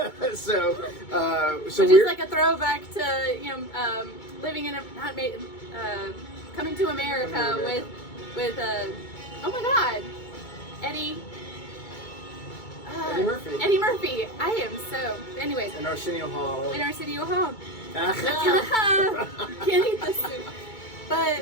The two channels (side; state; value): right; late; 2.2 ms